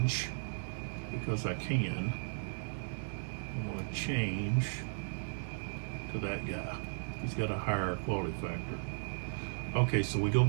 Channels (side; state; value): left; silent; digital silence